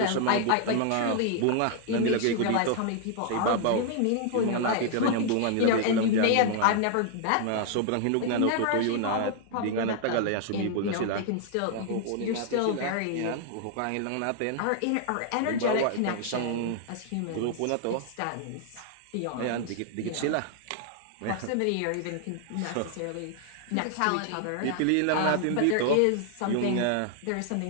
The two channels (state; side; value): different; both; correlation 0.00